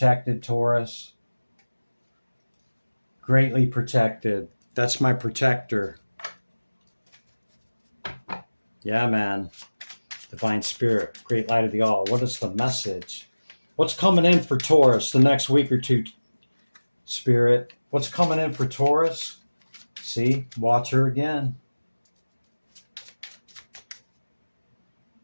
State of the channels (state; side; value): inverted; both; correlation -1.00